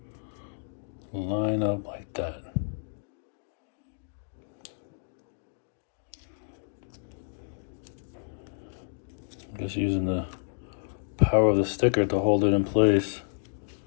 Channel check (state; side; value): silent; right; digital silence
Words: line up like that. I guess using the power of the sticker to hold it in place.